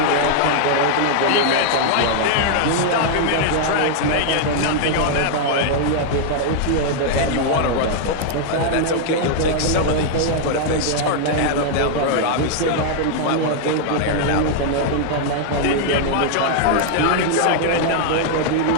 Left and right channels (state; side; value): different; both; correlation 0.00